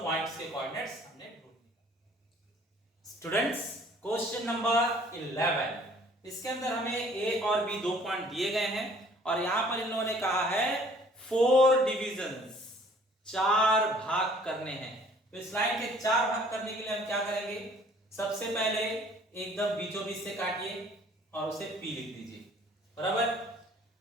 के कोऑर्डिनेट्स हमने ढूंढ लिए। स्टूडेंट्स, क्वेश्चन नंबर 11, इसके अंदर हमें ए और बी 2 पॉइंट दिए गए हैं और यहां पर इन लोगों ने कहा है 4 डिविजन्स, 4 भाग करने हैं। तो इस लाइन के 4 भाग करने के लिए हम क्या करेंगे? सबसे पहले एकदम बीचों बीच से काटिए और उसे पी लिख दीजिए, बराबर।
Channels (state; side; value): normal; both; correlation 0.55